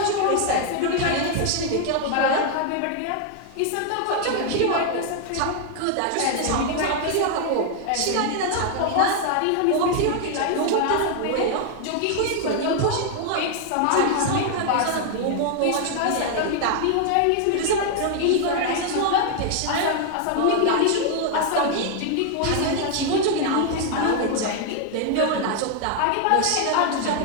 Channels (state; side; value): different; both; correlation 0.00